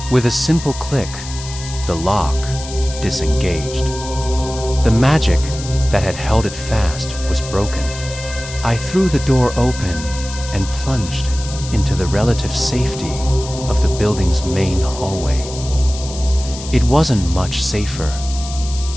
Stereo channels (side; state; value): left; noise; hiss, 12 dB below the sound